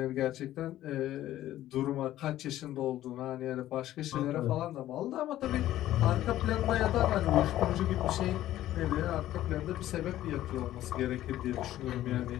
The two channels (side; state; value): right; quieter; 13.7 dB